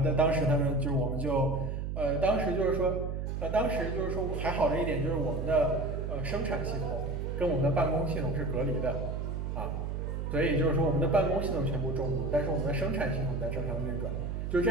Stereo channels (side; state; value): right; noise; hum, 3 dB below the sound